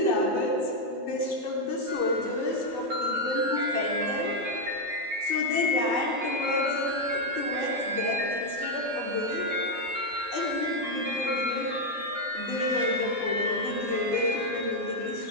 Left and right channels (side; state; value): left; late; 12 ms